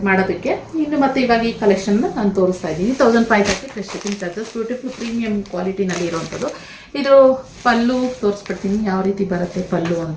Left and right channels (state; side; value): identical; both; correlation 1.00